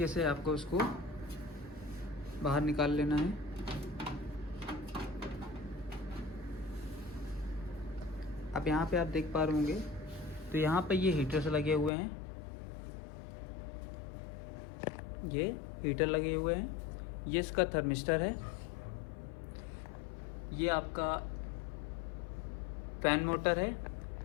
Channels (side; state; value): right; drops out; at 11.9 s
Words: से आपको उसको बाहर निकाल लेना है। अब यहाँ पे आप देख पा रहे होंगे तो यहाँ पे ये हीटर्स लगे हुए हैं, ये हीटर लगे हुए हैं। ये इसका थर्मिस्टर है, ये आपका फैन मोटर है